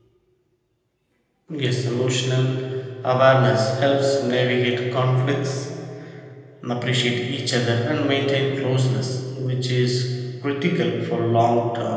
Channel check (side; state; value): both; identical; correlation 1.00